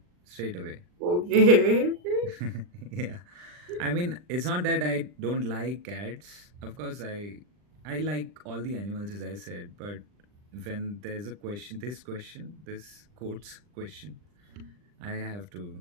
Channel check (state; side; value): late; left; 40 ms